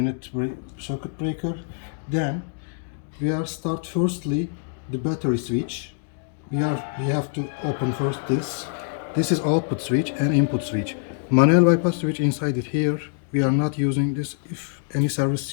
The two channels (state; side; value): silent; right; digital silence